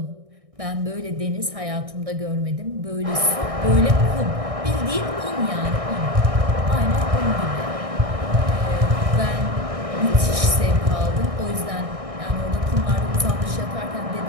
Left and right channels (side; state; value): left; late; 1.6 ms